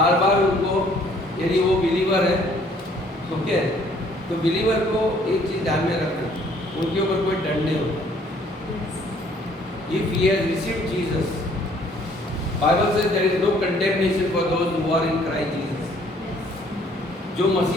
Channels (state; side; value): normal; both; correlation 0.60